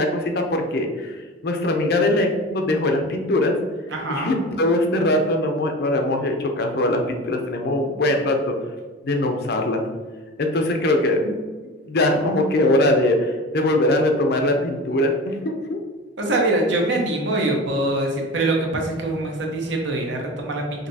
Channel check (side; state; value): both; normal; correlation 0.32